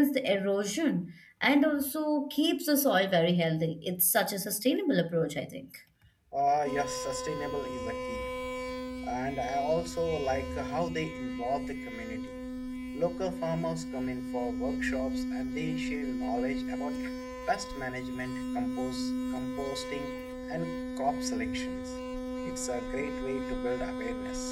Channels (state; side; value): identical; both; correlation 1.00